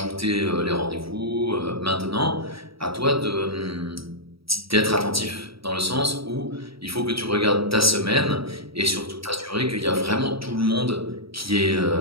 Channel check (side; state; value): left; late; 0.76 ms